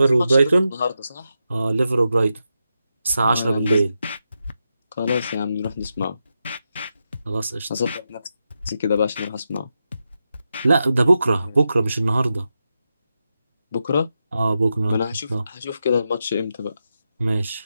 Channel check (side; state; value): both; inverted; correlation -0.87